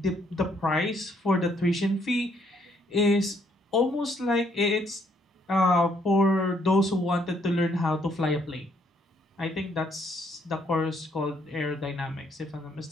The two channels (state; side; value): normal; both; correlation 0.69